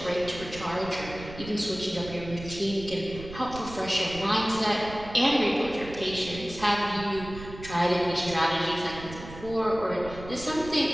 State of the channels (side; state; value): right; noise; rumble, 13 dB below the sound